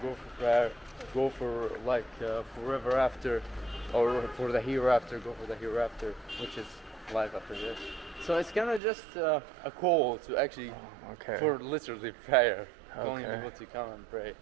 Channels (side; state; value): left; drops out; at 8.8 s